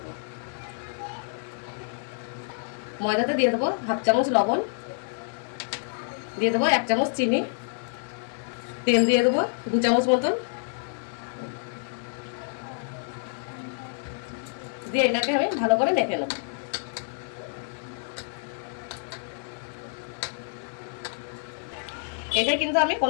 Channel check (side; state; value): right; silent; 59 dB below the other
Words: ময়দাতে দিয়ে দেবো হাফ চামচ লবণ, দিয়ে দেবো 1 চামচ চিনি, তেল দিয়ে দেবো 2 চামচ মতন, দিয়ে এটাকে আমি ভালো করে মেখে নেব। এটা কিন্তু আমি